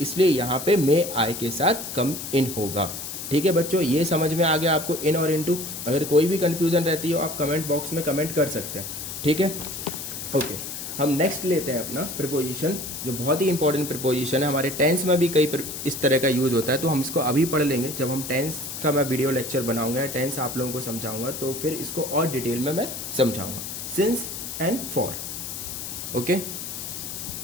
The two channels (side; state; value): left; noise; hiss, 7 dB below the sound